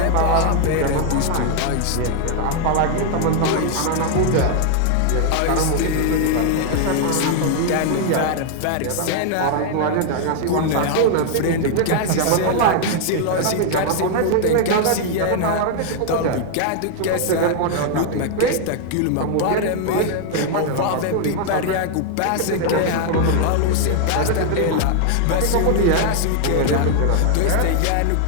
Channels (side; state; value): both; different; correlation 0.00